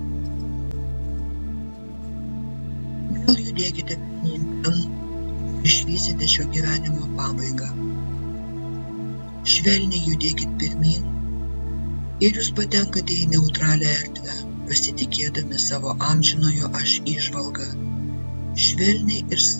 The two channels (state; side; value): inverted; both; correlation -1.00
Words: vėl judėkite pirmyn ten ir išvysite šio gyvenimo pabaigą. Švelniai judėkit pirmyn ir jūs patenkate į neutralią erdvę, pasitikėdami savo amžinojo aš įžvalgą. Švelniai ir